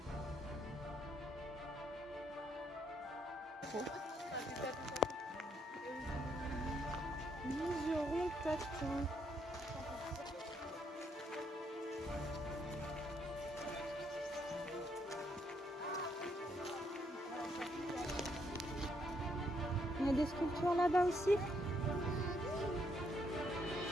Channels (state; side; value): normal; both; correlation 0.73